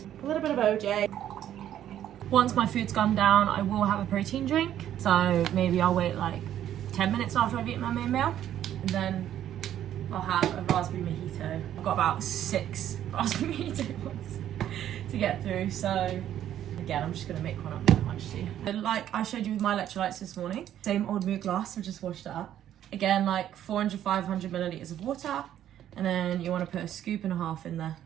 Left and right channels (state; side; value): quieter; left; 11.2 dB